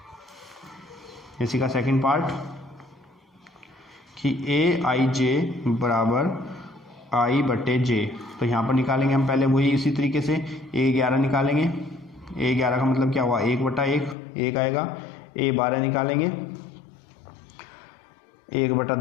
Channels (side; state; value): right; drops out; at 14.2 s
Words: इसी का सेकंड पार्ट कि aij बराबर i/j। तो यहाँ पर निकालेंगे हम पहले वही इसी तरीके से a11 निकालेंगे। a11 का मतलब क्या हुआ 1/1, 1 आएगा। a12 निकालेंगे